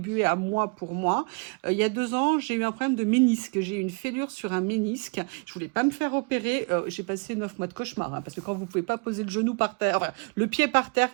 à moi pour moi. Il y a 2 ans, j'ai eu un problème de ménisque. J'ai eu une fêlure sur un ménisque. Je voulais pas me faire opérer. J'ai passé 9 mois de cauchemar, hein, parce que quand vous pouvez pas poser le genou par terre, enfin, le pied par terre,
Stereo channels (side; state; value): left; quieter; 33.4 dB